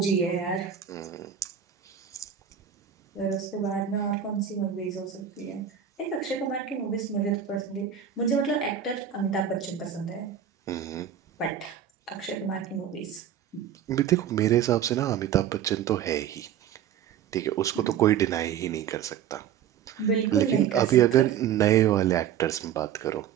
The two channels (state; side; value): quieter; left; 9.2 dB